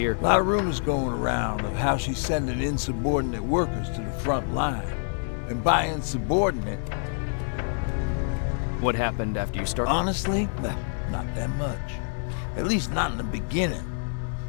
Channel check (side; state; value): right; silent; digital silence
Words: A lot of rumors going around of how she's sending insubordinate workers to the front line. And by insubordinate... What happened after you started? Honestly, not that much. At least not in the beginning.